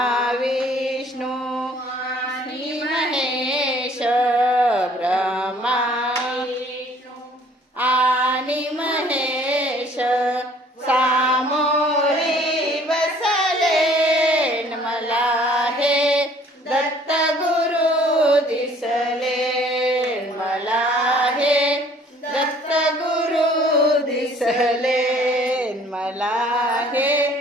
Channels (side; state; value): both; normal; correlation 0.56